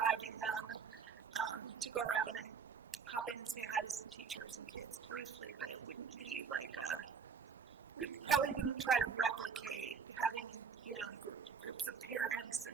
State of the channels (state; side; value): quieter; left; 6.2 dB